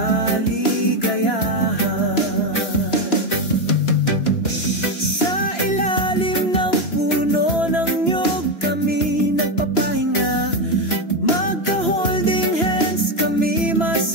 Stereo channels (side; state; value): right; late; 2.9 ms